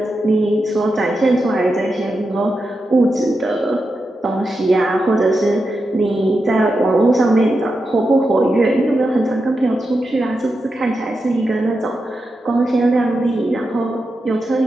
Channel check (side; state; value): both; normal; correlation 0.88